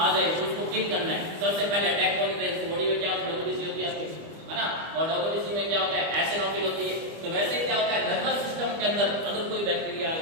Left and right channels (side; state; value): left; late; 25 ms